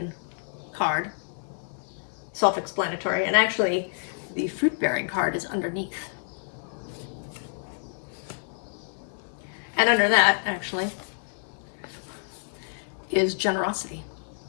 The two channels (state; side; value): silent; right; 59 dB below the other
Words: card, self-explanatory, and actually the fruit-bearing card is underneath. And under that, actually, is generosity